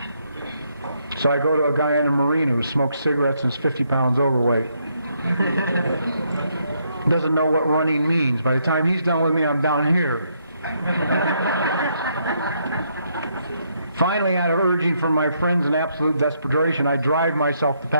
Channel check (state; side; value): inverted; both; correlation -0.74